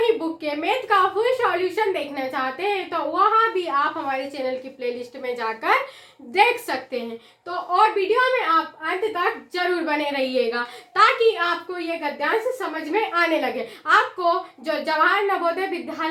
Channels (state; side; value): identical; both; correlation 1.00